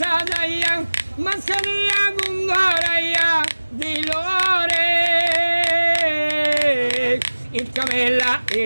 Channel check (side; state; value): both; inverted; correlation -1.00